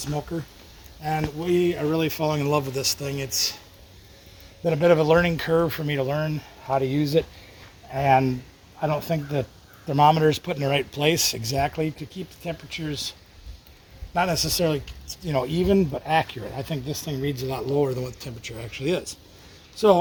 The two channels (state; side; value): identical; both; correlation 1.00